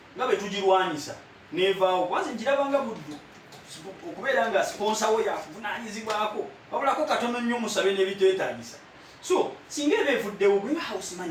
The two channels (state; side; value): identical; both; correlation 1.00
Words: nga bwe tugirwanyisa. Neevaawo. Kwanza nkirabanga buddu. Okubeera nga sponsor we yakuvunaanyizibwako. Wabulako katono nnyo musabe n'ebiteetaagisa. So, singa ebevuddewo gwe house